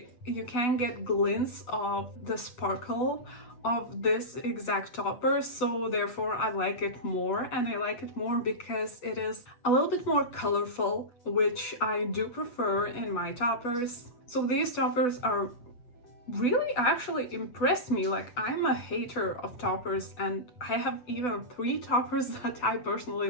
you can get glints of the sparkle of this exact topper, so therefore I like it more, and I like it more because it is a little bit more colorful, which I do prefer in my toppers. So these toppers are really actually impressed me. Like, I'm a hater of toppers and I have even 3 toppers that I personally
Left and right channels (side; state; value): right; late; 8.1 ms